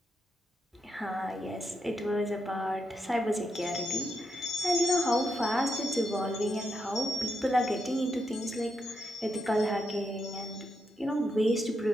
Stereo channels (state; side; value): normal; both; correlation 0.82